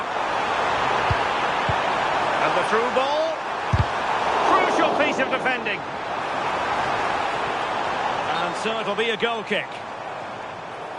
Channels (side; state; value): both; identical; correlation 1.00